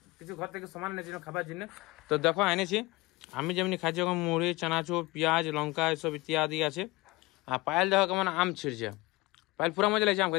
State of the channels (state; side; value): quieter; right; 22.1 dB